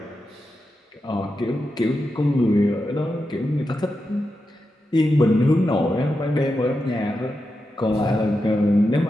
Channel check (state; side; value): normal; both; correlation 0.89